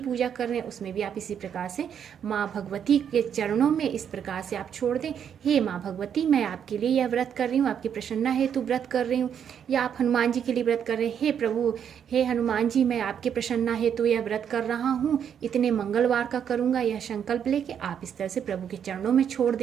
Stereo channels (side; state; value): left; quieter; 8.3 dB